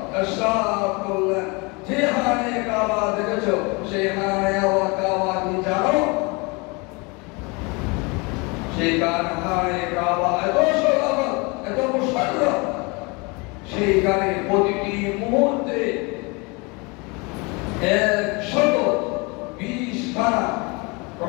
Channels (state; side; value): quieter; right; 28.5 dB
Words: ইরশাদ করলেন, যে খানে কাবা দেখেছো সেই খানে কাবা কি জানো? সেই খানে কাবা এত সরল, এত মুশাররফ, সেইখানে প্রতিটি মুহূর্তে 120 খানা